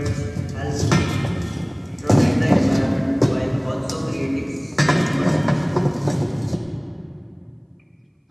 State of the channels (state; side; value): identical; both; correlation 1.00